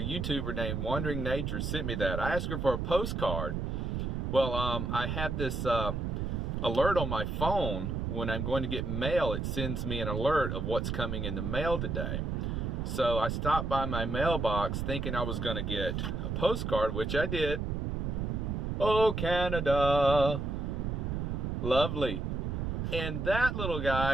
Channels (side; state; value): right; noise; rumble, 2 dB below the sound